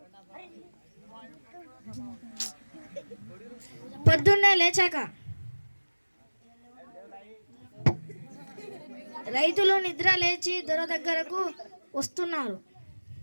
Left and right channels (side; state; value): both; inverted; correlation -1.00